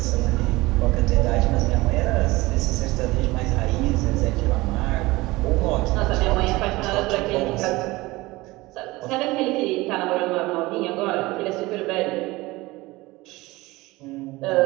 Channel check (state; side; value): quieter; left; 20.7 dB